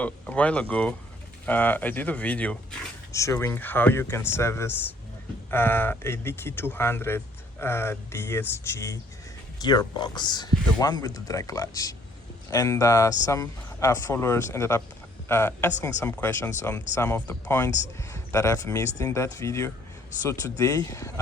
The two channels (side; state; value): both; normal; correlation 0.61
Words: a while ago, I did a video showing how you can service a DQ200 DSG Gearbox, the one with the drag clutch. And some followers ended up asking some questions on some of the points that I've missed in that video. So today